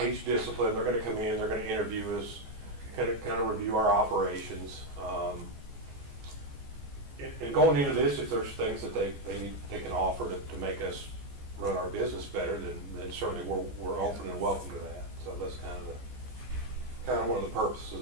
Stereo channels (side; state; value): left; late; 14 ms